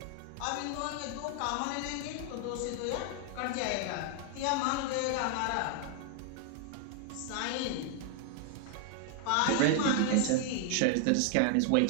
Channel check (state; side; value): different; both; correlation 0.00